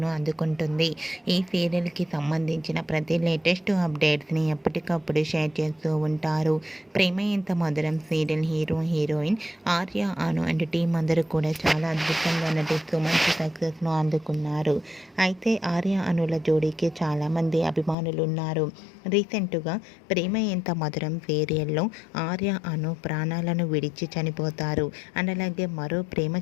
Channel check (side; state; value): right; drops out; at 17.9 s